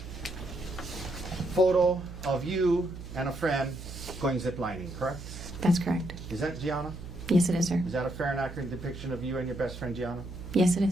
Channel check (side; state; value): right; noise; hum, 12 dB below the sound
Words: photo of you and a friend going ziplining, correct? That's correct. Is that Gianna? Yes, it is, sir. Is that a fair and accurate depiction of you and your best friend Gianna? Yes, it